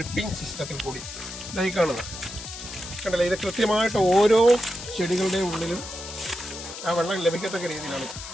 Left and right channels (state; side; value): noise; left; hiss, 11 dB below the sound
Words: സിസ്റ്റത്തിൽ കൂടി ഇതായി കാണുന്നത് കണ്ടല്ലേ, ഇത് കൃത്യമായിട്ട് ഓരോ ചെടികളുടെയും ഉള്ളിലും ആ വെള്ളം ലഭിക്കത്തക്ക രീതിയിലാണ്.